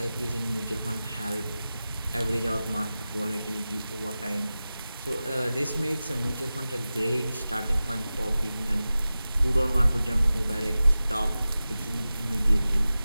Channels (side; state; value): both; inverted; correlation -0.95